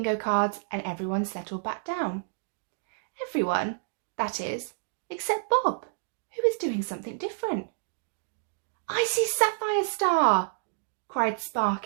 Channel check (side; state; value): left; silent; digital silence